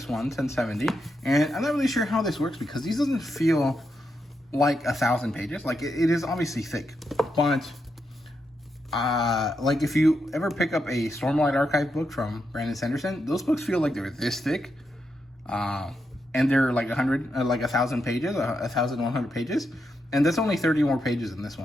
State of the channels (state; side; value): normal; both; correlation 0.84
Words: one, 1070. And I'm not really sure how this works, because these doesn't feel like 1,000 pages. Like it is obviously thick, but like if you ever pick up a Stormlight Archive book from Brandon Sanderson, those books feel like they're this thick. And they're like 1,000 pages, 1,100 pages, and that's only 30 more pages in this